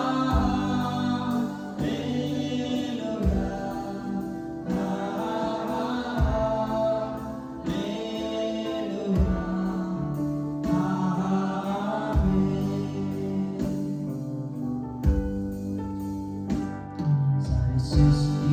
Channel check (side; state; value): both; identical; correlation 1.00